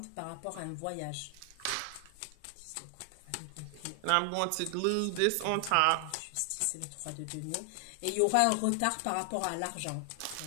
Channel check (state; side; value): different; both; correlation 0.00